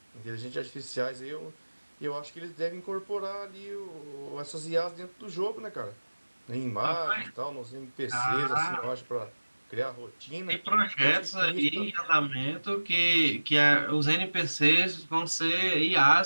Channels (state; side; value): inverted; both; correlation -1.00